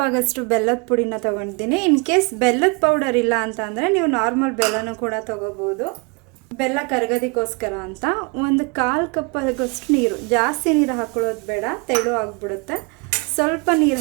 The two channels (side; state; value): left; quieter; 31.6 dB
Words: ಆಗೋಷ್ಟು ಬೆಲ್ಲದ ಪುಡಿನ ತೊಗೊಂಡಿದ್ದೀನಿ. ಇನ್ ಕೇಸ್ ಬೆಲ್ಲದ ಪೌಡರ್ ಇಲ್ಲ ಅಂತ ಅಂದರೆ ನೀವು ನಾರ್ಮಲ್ ಬೆಲ್ಲನೂ ಕೂಡ ತೊಗೋಬೋದು. ಬೆಲ್ಲ ಕರಗೋದಕ್ಕೋಸ್ಕರ ಅಂತ ಒಂದು 1/4 ಕಪ್ ಆಗೋಷ್ಟು ನೀರು, ಜಾಸ್ತಿ ನೀರು ಹಾಕೊಳ್ಳೋದು ಬೇಡ, ತೆಳು ಆಗಿಬಿಡುತ್ತೆ. ಸ್ವಲ್ಪ ನೀರು